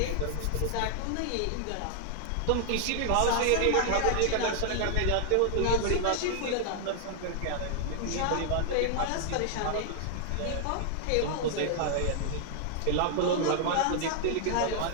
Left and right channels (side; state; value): both; different; correlation 0.00